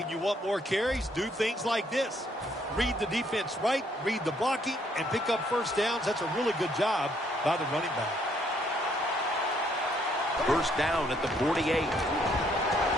you want more carries, do things like this. Read the defense right, read the blocking, and pick up first downs. That's a really good job by the running back. First down at the 48. Newton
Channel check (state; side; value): normal; both; correlation 0.68